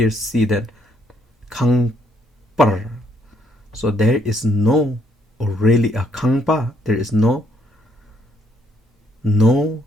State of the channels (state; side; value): normal; both; correlation 0.70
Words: see that kangpar. So there is no, or really a kangpa, there is no